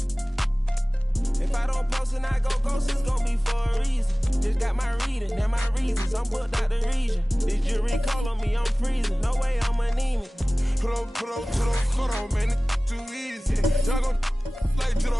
If I don't post and I go ghost, it's gon' be for a reason. Just got my reading and my reasons. I'm booked out the region. This jury call on me, I'm freezing. No way I'm anemic. Put on, man, it's too easy. Y'all gon' like to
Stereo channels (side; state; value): both; normal; correlation 0.98